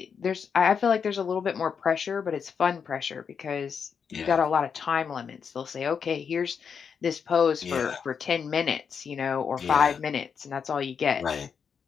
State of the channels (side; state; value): right; quieter; 6.6 dB